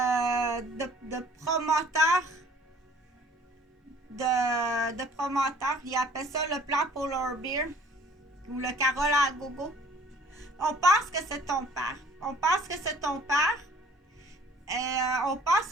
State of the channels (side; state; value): both; normal; correlation 0.53